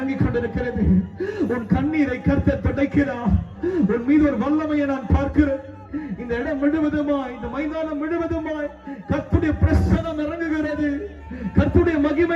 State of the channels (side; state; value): both; identical; correlation 1.00